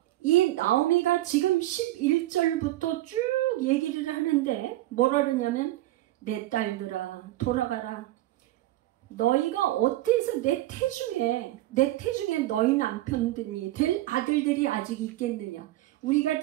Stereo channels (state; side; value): quieter; left; 16.2 dB